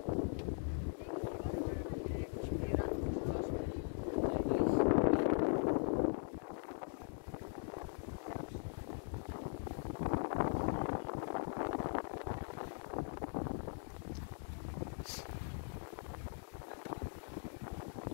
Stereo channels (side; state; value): right; silent; digital silence